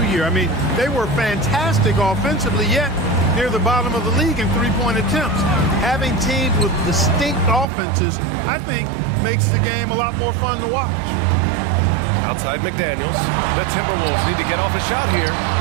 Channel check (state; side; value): drops out; left; at 7.7 s